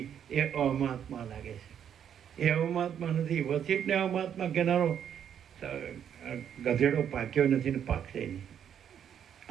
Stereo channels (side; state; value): left; quieter; 8.9 dB